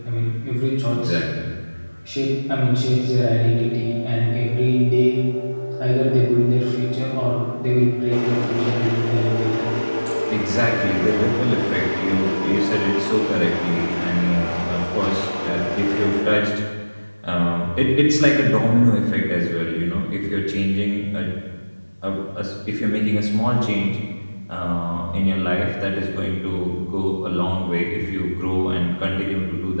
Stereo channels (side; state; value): both; inverted; correlation -1.00